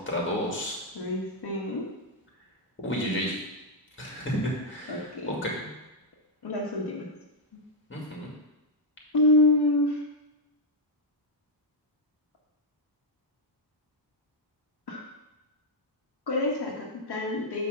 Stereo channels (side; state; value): both; normal; correlation -0.02